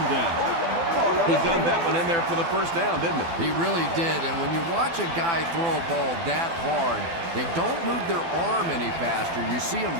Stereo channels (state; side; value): late; left; 12 ms